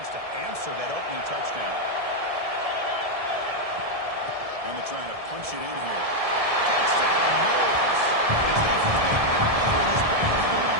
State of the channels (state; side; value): late; left; 1.7 ms